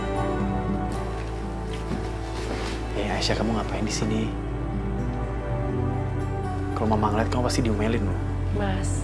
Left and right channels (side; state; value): both; identical; correlation 1.00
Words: Aisyah, kamu ngapain di sini? Kalau mama ngeliat kamu pasti diomelin loh. Mas,